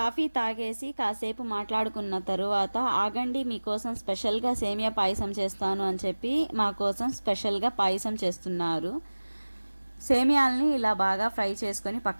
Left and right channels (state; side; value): inverted; both; correlation -1.00